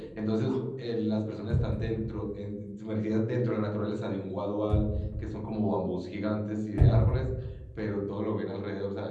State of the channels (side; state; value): both; identical; correlation 1.00